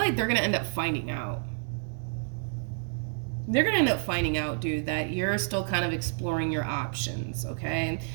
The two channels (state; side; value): silent; left; digital silence